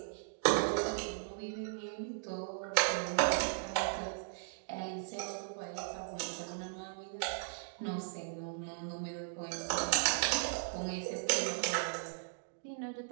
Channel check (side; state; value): left; silent; digital silence